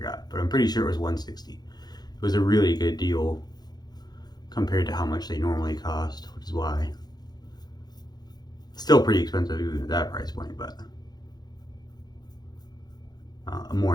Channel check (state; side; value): late; right; 0.20 ms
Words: but I'm pretty sure it was 160. It was a really good deal compared to how much they normally cost, which is why. Still pretty expensive even at that price point, but more